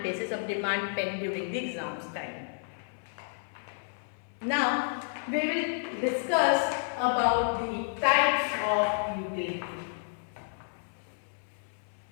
basis of demand pen during the exams time. Now we will discuss about the types of utility.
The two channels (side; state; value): right; silent; 57 dB below the other